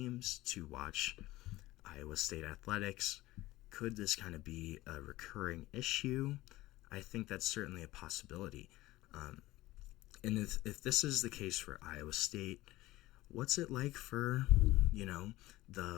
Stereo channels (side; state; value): right; quieter; 17.9 dB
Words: to watch Iowa State athletics? Could this kind of be a recurring issue? I think that's certainly a possibility. And if this is the case for Iowa State, what's it like for,